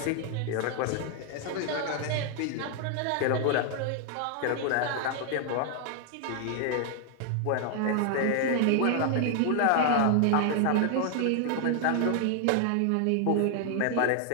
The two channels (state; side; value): different; both; correlation 0.00